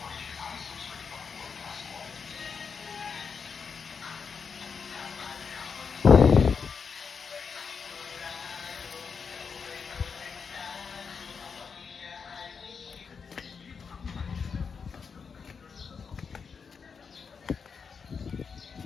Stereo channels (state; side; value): quieter; right; 5.8 dB